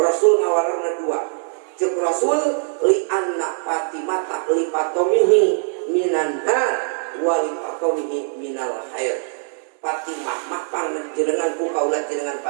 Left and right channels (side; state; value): left; silent; digital silence